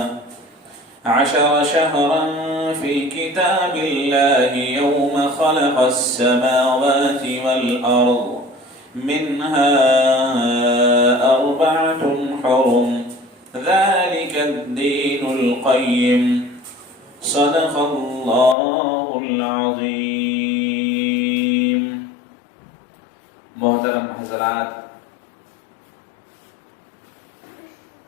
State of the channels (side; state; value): right; drops out; at 18.6 s